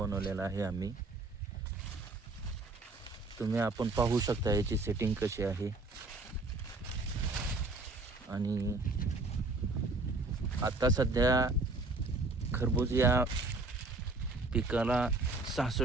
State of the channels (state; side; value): quieter; left; 3.2 dB